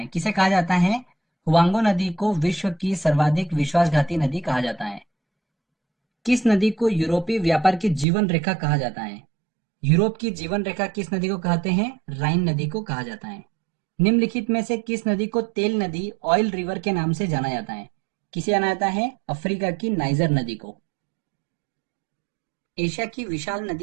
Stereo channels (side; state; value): left; drops out; at 8.1 s